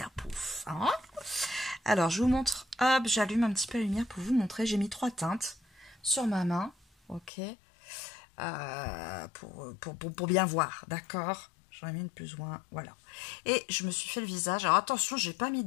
Hein. Alors je vous montre, hop, j'allume un petit peu la lumière pour vous montrer. J'ai mis 3 teintes sur ma main, ok, pour bien voir, d'accord. J'en ai mis une plus ou moins, voilà. Et je me suis fait le visage. Alors attention, j'ai pas mis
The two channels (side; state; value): right; drops out; at 7.3 s